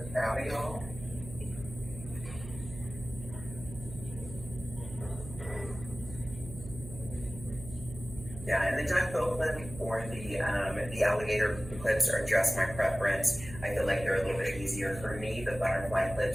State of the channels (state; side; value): noise; right; hum, 12 dB below the sound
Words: proud of y'all. Yeah, and the duckbill clip or the alligator clips are just my preference. I feel like they're a little bit easier for me. The butterfly